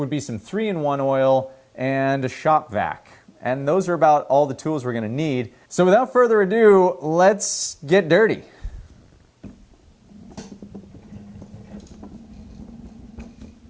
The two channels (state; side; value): identical; both; correlation 1.00